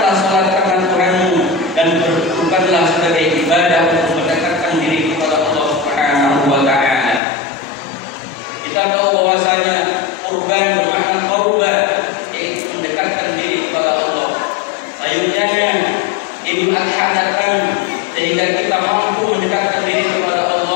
Idul Adha datang sehingga kita mampu mendekatkan diri kepada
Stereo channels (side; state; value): right; drops out; at 7.2 s